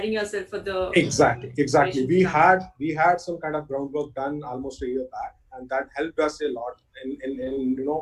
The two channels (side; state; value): both; identical; correlation 1.00